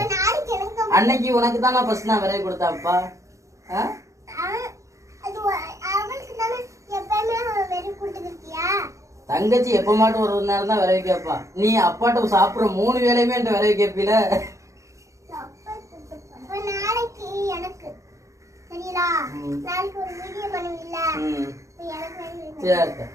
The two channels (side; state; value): left; late; 0.15 ms